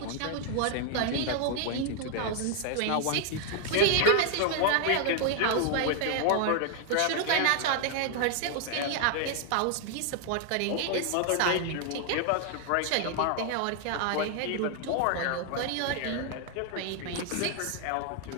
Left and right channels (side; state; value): both; different; correlation 0.00